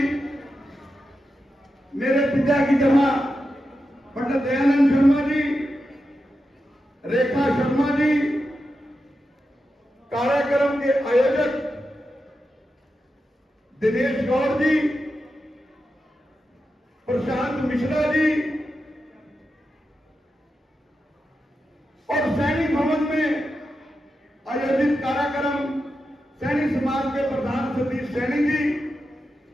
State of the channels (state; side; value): normal; both; correlation 0.89